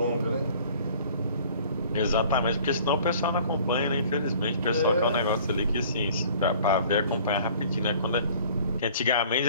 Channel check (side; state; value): both; inverted; correlation -0.51